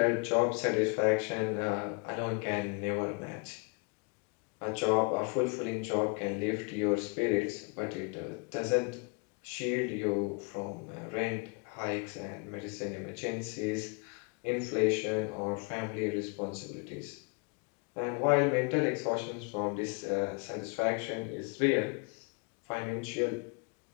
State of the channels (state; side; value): quieter; right; 34.1 dB